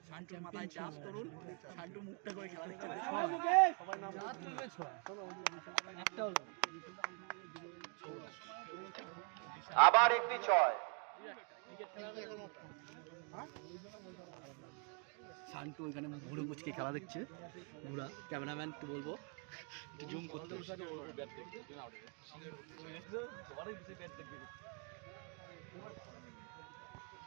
শান্তুর মাথায় চাপ করুন, শান্তু মুখটা করে খেলা দেখতে আবার একটি 6। শান্তু ওইখানে ঘুরে মুচকে খেলা দেখছে, ঘুরা ক্যামেরাম্যান একটু বলবো জুম করতে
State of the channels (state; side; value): quieter; left; 37.4 dB